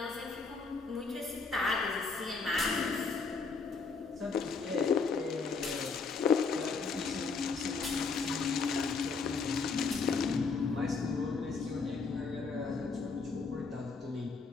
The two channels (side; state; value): right; quieter; 4.6 dB